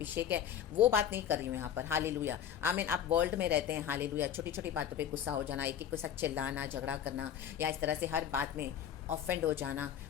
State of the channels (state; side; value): quieter; right; 9.3 dB